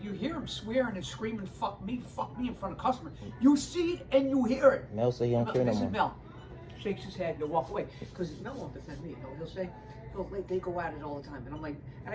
hear him swearing and screaming, "Fuck me," in front of customers. You see it and you hear it. Mel say he don't care no more. This is Mel. Shakes his head and walk away because Mel won't defend me. You know, he'll say, they go at it all the time, and I'm like, and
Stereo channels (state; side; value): identical; both; correlation 1.00